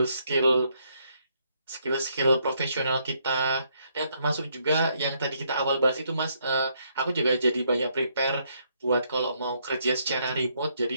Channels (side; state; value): both; inverted; correlation -0.73